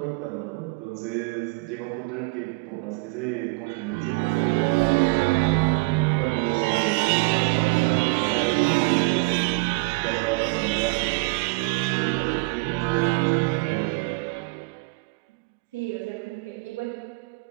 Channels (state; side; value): quieter; left; 27.1 dB